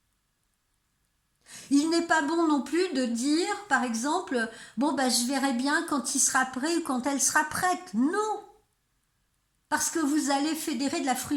Il n'est pas bon non plus de dire, par exemple, bon je verrai bien quand il sera prêt ou quand elle sera prête. Non, parce que vous allez fédérer de la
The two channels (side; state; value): both; identical; correlation 1.00